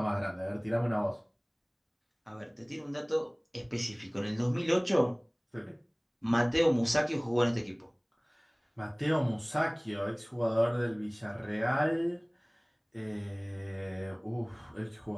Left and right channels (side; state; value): both; identical; correlation 1.00